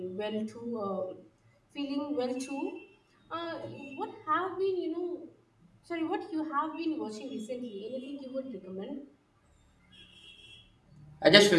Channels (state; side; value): identical; both; correlation 1.00